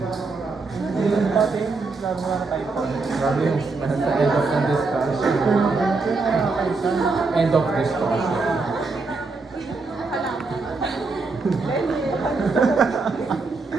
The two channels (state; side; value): quieter; left; 3.9 dB